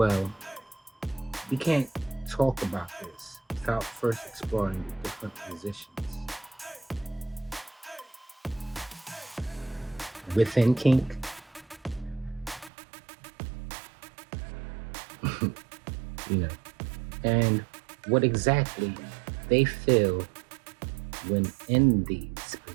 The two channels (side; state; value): left; drops out; at 12.7 s